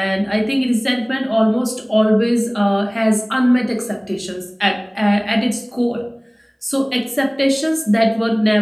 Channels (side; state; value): both; identical; correlation 1.00